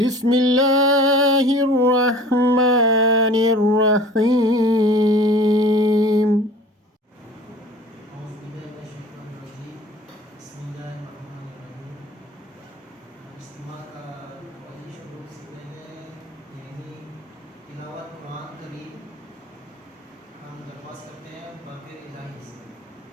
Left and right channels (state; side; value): normal; both; correlation 0.44